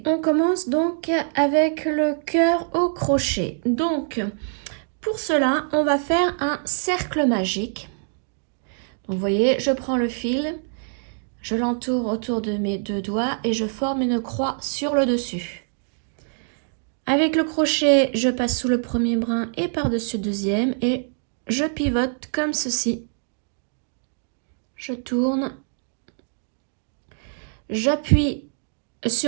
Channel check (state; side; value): silent; left; 62 dB below the other